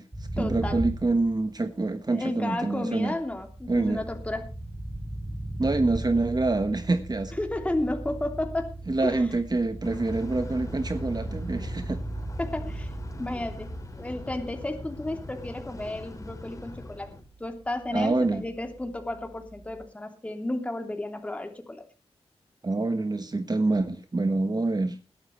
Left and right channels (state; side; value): normal; both; correlation 0.91